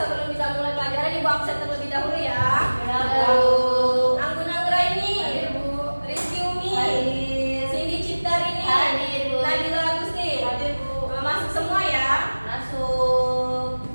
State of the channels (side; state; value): both; inverted; correlation -1.00